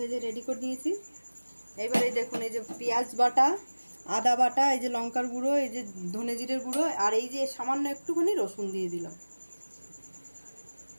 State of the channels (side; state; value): both; inverted; correlation -1.00